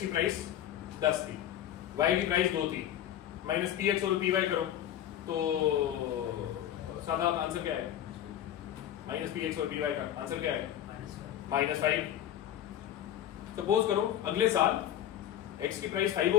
प्राइस 10 थी, वाई की प्राइस 2 थी, minus P x over P Y करो तो सादा आंसर क्या है? माइनस पी एक्स और पी वाई का आंसर क्या है? -5। सपोज करो अगले साल एक्स की प्राइस 5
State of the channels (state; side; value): quieter; right; 11.3 dB